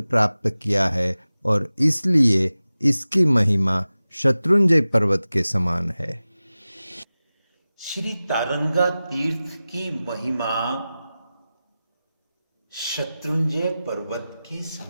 प्राप्त किया है और इसलिए इसकी महिमा शत्रुंजय पर्वत के समान है। श्री तारंगा तीर्थ की महिमा शत्रुंजय पर्वत के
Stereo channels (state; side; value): inverted; both; correlation -0.96